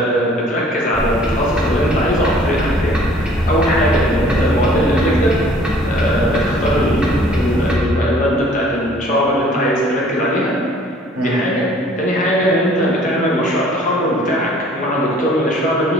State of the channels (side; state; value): both; normal; correlation 0.54